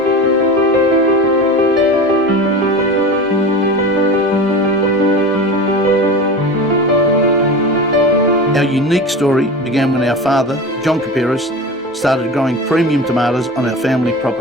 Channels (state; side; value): normal; both; correlation 0.31